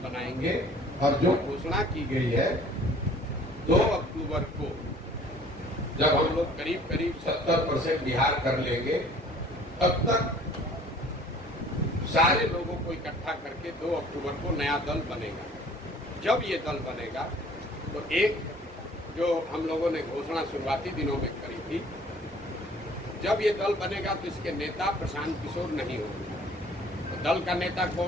बनाएंगे। और जो घोषणा की गई है 2 अक्टूबर को, जब हम लोग करीब 70% बिहार कर लेंगे, तब तक सारे लोगों को इकट्ठा करके 2 अक्टूबर को नया दल बनेगा। जब ये दल बनेगा तो एक जो हम लोगों ने घोषणा शुरुआती दिनों में करी थी, जब ये दल बनेगा तो इसके नेता प्रशांत किशोर नहीं होंगे। तो दल का नेता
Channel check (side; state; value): both; normal; correlation 0.52